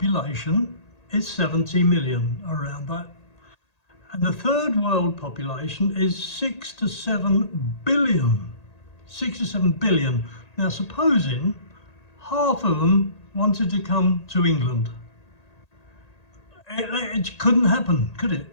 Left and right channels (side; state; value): right; late; 1.8 ms